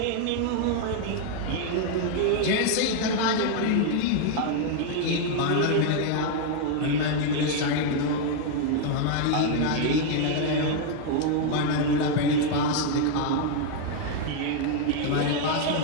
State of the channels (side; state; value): both; different; correlation 0.00